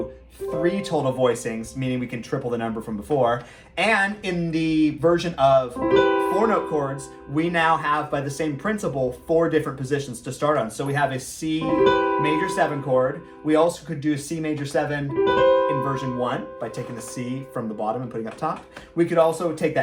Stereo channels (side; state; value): both; identical; correlation 1.00